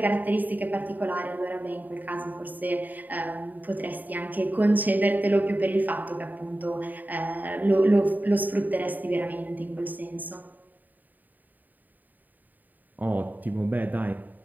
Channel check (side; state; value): left; late; 0.085 ms